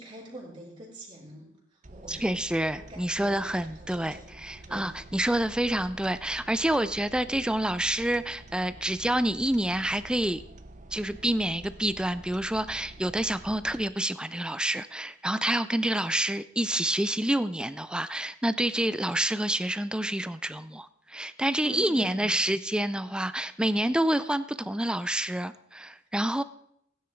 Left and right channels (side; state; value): both; normal; correlation 0.81